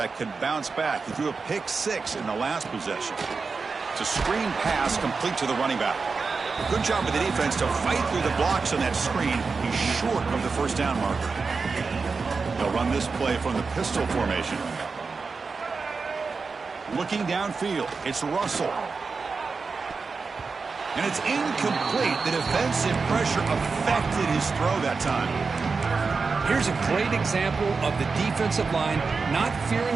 can bounce back. He threw a pick-6 in the last possession. It's a screen pass complete to the running back. Good job with the defense to fight through the blocks on that screen. He's short of the first down marker. They'll run this play from the pistol formation. Looking downfield, it's Russell. And it's incomplete. The defensive pressure affected his throw that time. Here's a great example of the defensive line not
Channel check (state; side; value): quieter; left; 4.6 dB